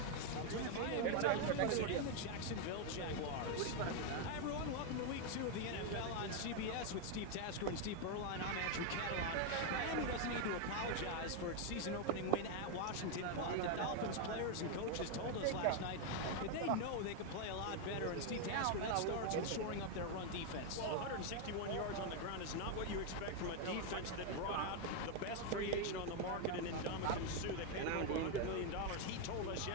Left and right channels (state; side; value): different; both; correlation 0.01